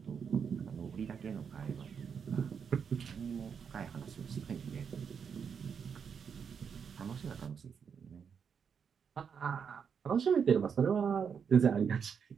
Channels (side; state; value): left; quieter; 6.8 dB